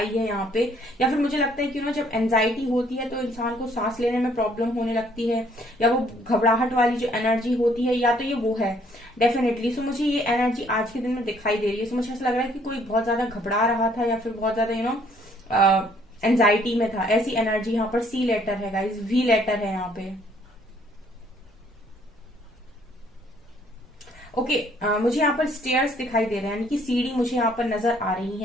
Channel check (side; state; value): both; normal; correlation 0.63